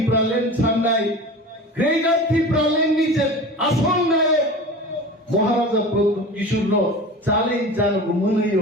সামনাই গ্রেটার ত্রিপুরালেন নিচে আসল নায়ক মহারাজা প্রদ্যুৎ কিশোর চ্যালেঞ্জ জানবো মনে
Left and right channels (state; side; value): normal; both; correlation 0.34